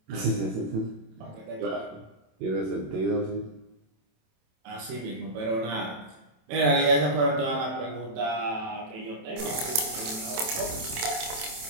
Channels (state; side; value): late; left; 27 ms